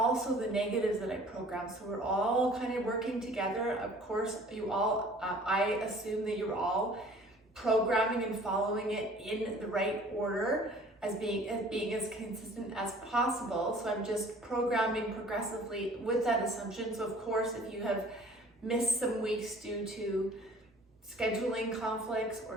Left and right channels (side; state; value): both; normal; correlation 0.50